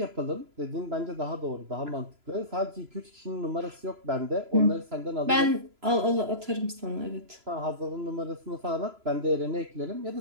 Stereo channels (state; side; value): late; left; 3.0 ms